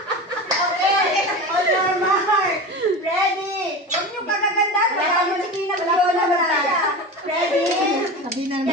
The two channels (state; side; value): normal; both; correlation 0.28